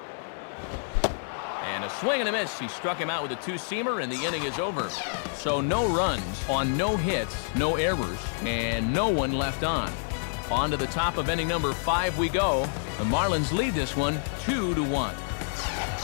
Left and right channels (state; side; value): silent; right; 59 dB below the other